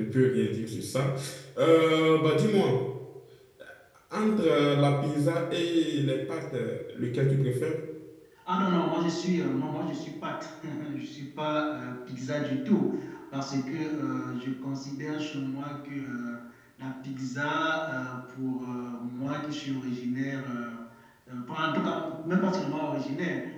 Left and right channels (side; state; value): both; identical; correlation 1.00